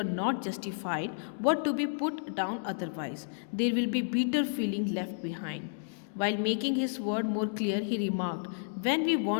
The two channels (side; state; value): right; silent; digital silence